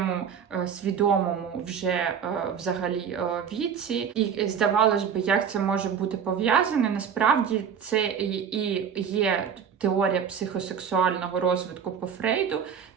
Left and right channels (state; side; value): quieter; left; 7.4 dB